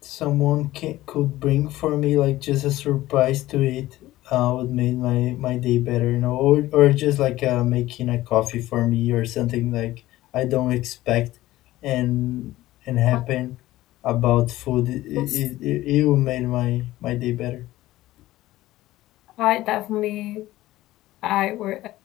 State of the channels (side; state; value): right; quieter; 16.3 dB